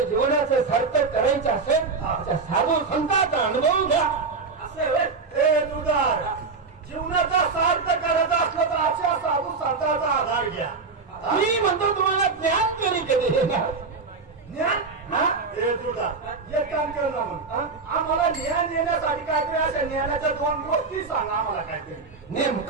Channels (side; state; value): left; quieter; 4.5 dB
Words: जीवनाचं सार्थक करायचं असेल तर साधू संतांचा अनुभव घ्या. असं आहे होय? ए तुझार जीवनाचा सार्थ करायचा असलं तर अशा साधू संतांचा आधार घ्या. मी म्हणतो तुम्हाला ज्ञान तरी कधी येणार. ज्ञान हा? ए तुझा एक काम कर ना मग. आम्हाला ज्ञान येण्यासाठी काहीतरी अशा ज्ञानाच्या दोन गोष्टी सांग आम्हाला काहीतरी.